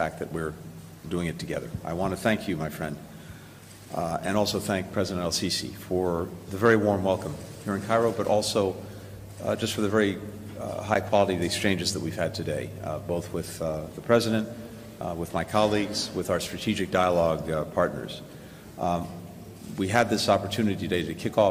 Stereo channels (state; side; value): identical; both; correlation 1.00